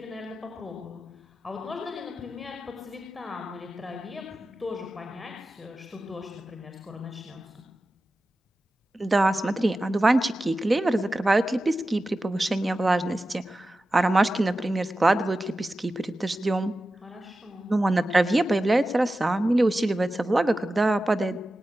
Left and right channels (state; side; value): normal; both; correlation 0.94